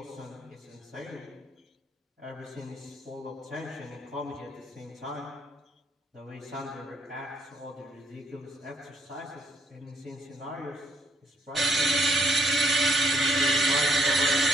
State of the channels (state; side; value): normal; both; correlation 0.70